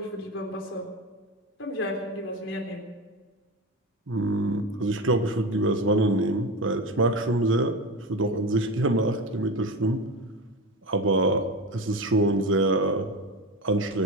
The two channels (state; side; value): normal; both; correlation 0.23